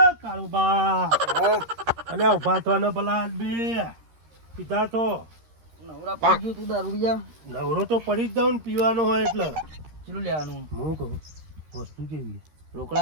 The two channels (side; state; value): left; late; 13 ms